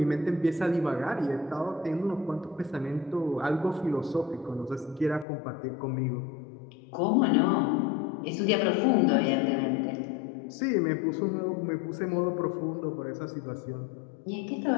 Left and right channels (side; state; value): right; drops out; at 5.2 s